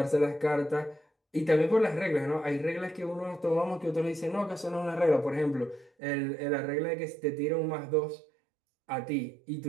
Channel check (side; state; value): left; drops out; at 5.9 s